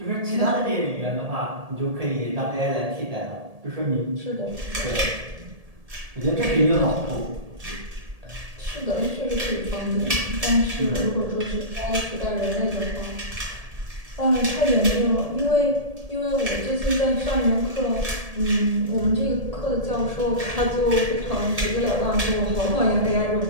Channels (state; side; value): late; left; 1.7 ms